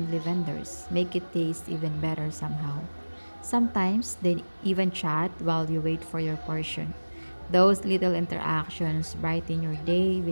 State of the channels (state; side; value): inverted; both; correlation -1.00